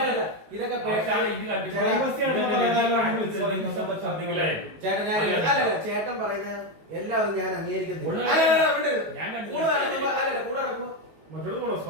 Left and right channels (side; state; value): left; late; 19 ms